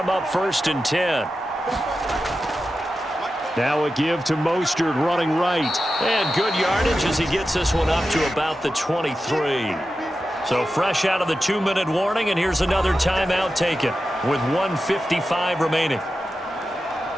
up 1st and 10. Now a give to Mostert running right. And good yardage as he gets this one up to about the 23. So fresh out of the 2-minute warning, and here's another timeout taken with 1:55 remaining.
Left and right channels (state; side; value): normal; both; correlation 0.91